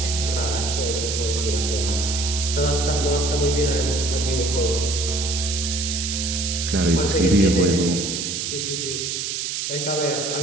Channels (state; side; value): noise; right; hiss, 2 dB below the sound